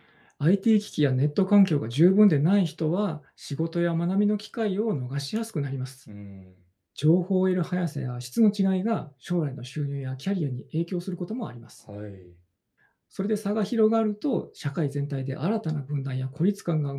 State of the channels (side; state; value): both; identical; correlation 1.00